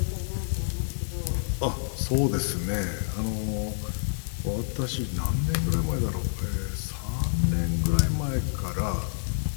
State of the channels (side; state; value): right; silent; digital silence